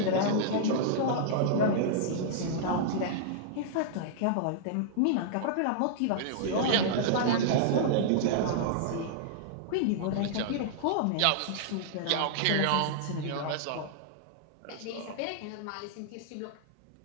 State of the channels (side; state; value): both; different; correlation -0.01